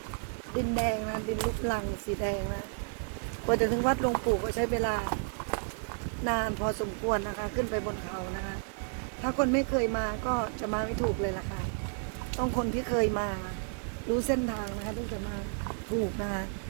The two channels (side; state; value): left; silent; 57 dB below the other